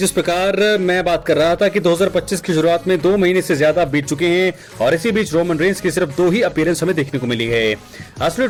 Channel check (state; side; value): identical; both; correlation 1.00